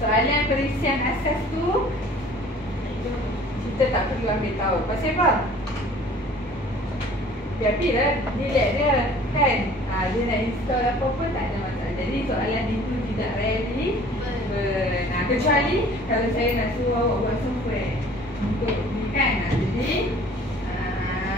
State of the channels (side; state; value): both; normal; correlation 0.50